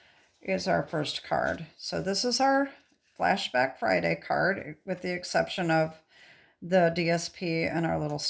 is our first card. So this is our Flashback Friday card, with the exception of the DSP and our little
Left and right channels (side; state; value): both; identical; correlation 1.00